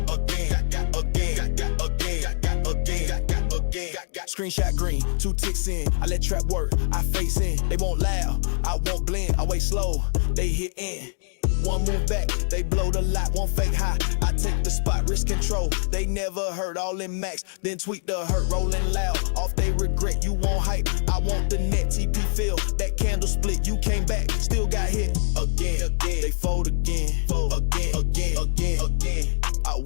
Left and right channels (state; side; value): silent; right; digital silence